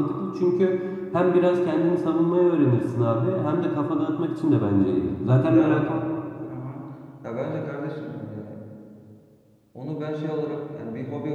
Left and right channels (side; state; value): both; identical; correlation 1.00